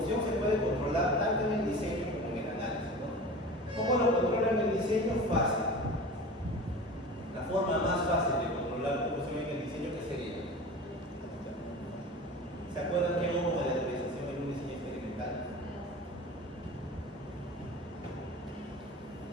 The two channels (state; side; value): normal; both; correlation 0.35